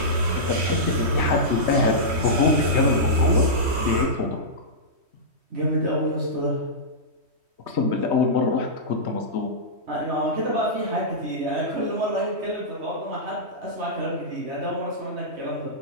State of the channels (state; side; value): late; left; 3.1 ms